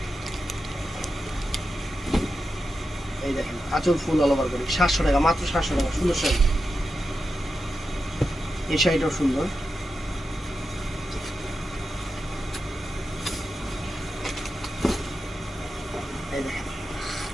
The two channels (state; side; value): normal; both; correlation 0.89